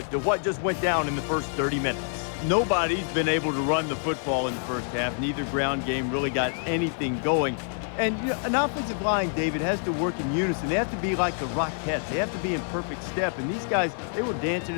to what just went down in the first 30 minutes. Nobody's been able to run the football in the first half. Neither ground game really got anything going. And you know, an offensive line, David, has to work in unison. They have to be like the Rockettes. They have to be in perfect step. And these guys, they were dancing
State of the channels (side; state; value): right; silent; 58 dB below the other